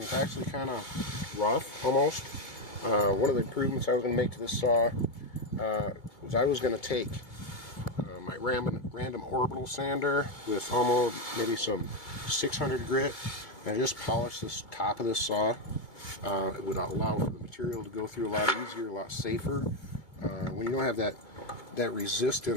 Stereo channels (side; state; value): right; late; 2.2 ms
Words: it's actually kind of rough, almost. One of the improvements I was going to make to this saw was I was going to take my random orbital sander with almost maybe some 600 grit and just polish this top of this saw. It would allow for the material to go through a lot easier, a lot safer. When you don't have that